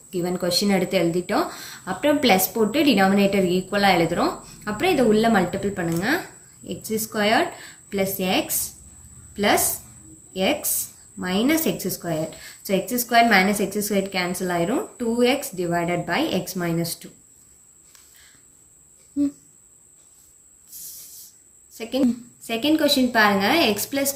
given question எடுத்து எழுதிட்டோம். அப்புறம் plus போட்டு denominator ஈக்குவலா எழுதுறோம். அப்புறம் இத உள்ள மல்டிபிள் பண்ணுங்க. x squared plus x minus x squared. So x squared minus x squared cancel ஆயிரும். 2x divided by x minus 2. Second question பாருங்க. x plus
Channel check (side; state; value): both; identical; correlation 1.00